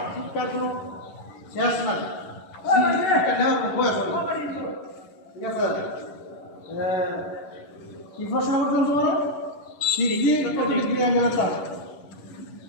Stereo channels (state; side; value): late; right; 11 ms